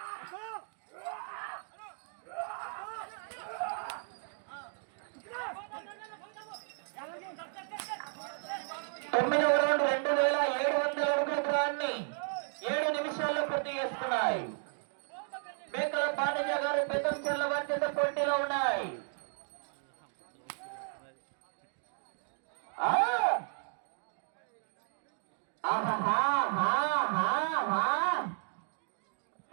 దూరాన్ని 7 నిమిషాల్లో పూర్తి చేసుకున్నాయి. మేకల పాండజ గారు పెద్దంచెర్ల వారి చేత పోటీలో ఉన్నాయి.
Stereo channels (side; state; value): left; silent; digital silence